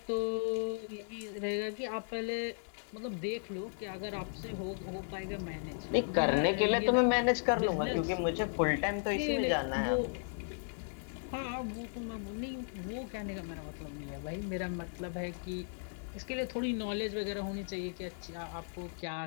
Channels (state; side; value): silent; right; digital silence